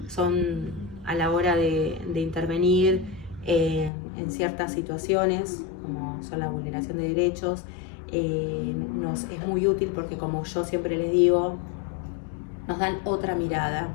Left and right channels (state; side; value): drops out; right; at 3.9 s